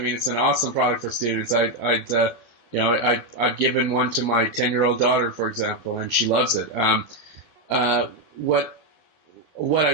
it's an awesome product for students. I've given one to my 10-year-old daughter, for example, and she loves it. What I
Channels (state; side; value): late; right; 12 ms